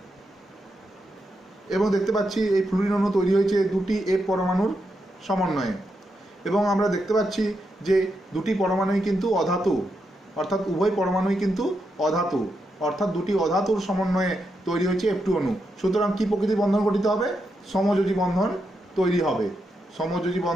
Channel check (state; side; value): normal; both; correlation 0.84